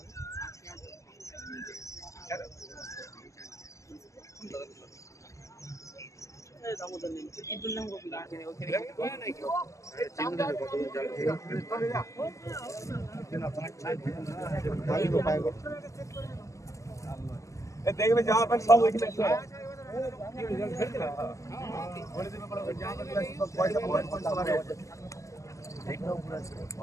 দেখবে জামা প্যান্ট সব ওইখানে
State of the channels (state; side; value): late; right; 0.16 ms